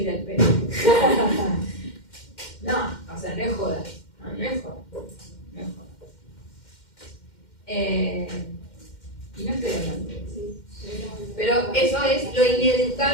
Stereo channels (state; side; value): late; right; 2.1 ms